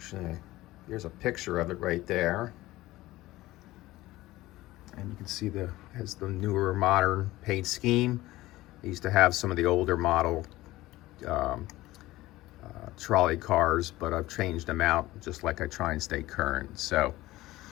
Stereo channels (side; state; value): right; quieter; 17.6 dB